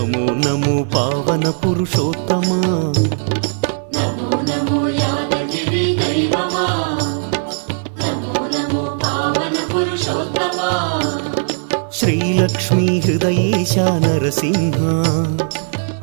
నమో పావన పురుషోత్తమా, నమో నమో యాదగిరి దైవమా, నమో నమో పావన పురుషోత్తమా, శ్రీలక్ష్మీ హృదయేశ నరసింహ,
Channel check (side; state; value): left; silent; digital silence